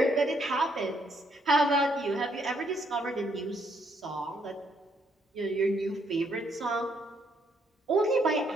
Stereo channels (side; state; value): both; normal; correlation 0.71